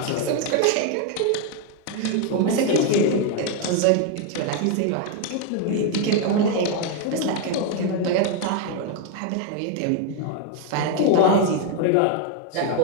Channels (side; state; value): both; different; correlation 0.01